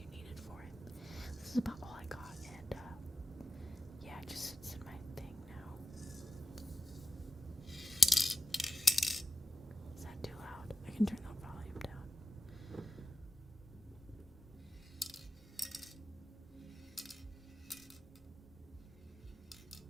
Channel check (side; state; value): both; normal; correlation 0.94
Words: needed for it. This is about all I got, and yeah, it just sits in my thing now. Is that too loud? I can turn the volume down.